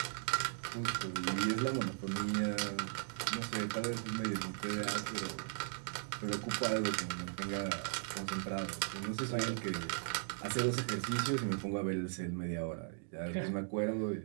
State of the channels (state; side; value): silent; left; digital silence